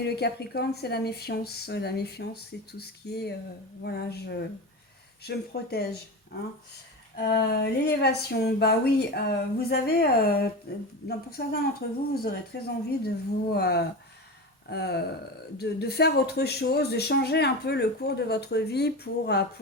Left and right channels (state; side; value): normal; both; correlation 0.25